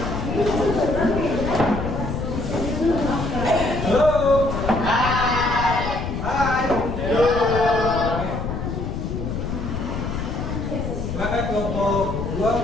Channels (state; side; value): noise; left; rumble, 4 dB below the sound